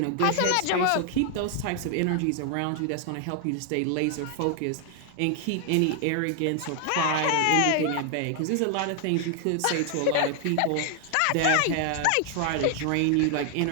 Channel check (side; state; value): both; different; correlation 0.00